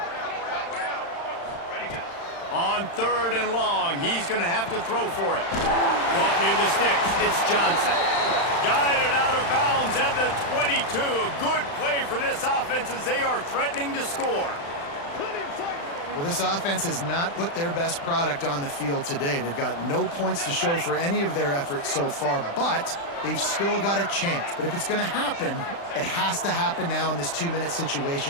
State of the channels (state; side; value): late; right; 35 ms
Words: On 3rd and long, he's going to have to throw for it. Caught near the sticks. It's Johnson. Guided out of bounds at the 22. A good play for this offense as they are threatening to score. Well, this offense has not put their best product on the field today. They've got no points to show for any of their efforts so far, but they've still got a chance. But if it's going to happen, it has to happen now in this 2-minute